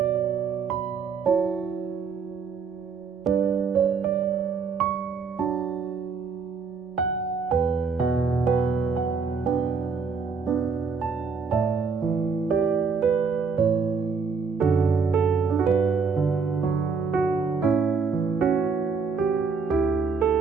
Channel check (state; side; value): quieter; left; 5.3 dB